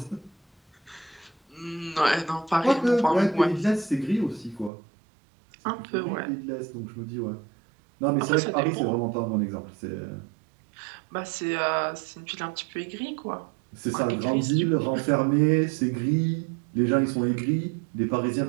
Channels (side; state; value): left; drops out; at 4.7 s